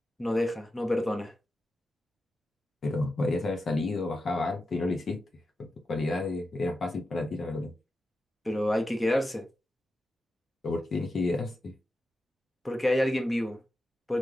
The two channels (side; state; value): both; normal; correlation 0.90